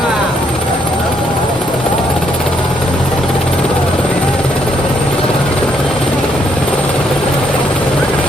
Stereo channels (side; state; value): both; normal; correlation 0.72